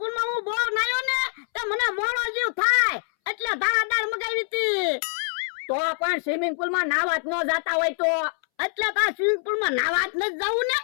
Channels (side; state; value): right; silent; 62 dB below the other